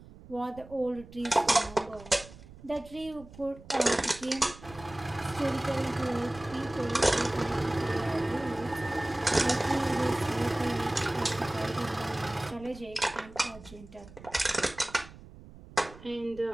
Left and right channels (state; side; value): noise; right; rumble, 19 dB below the sound